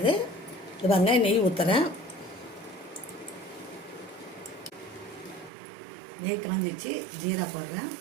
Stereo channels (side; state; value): left; drops out; at 5.5 s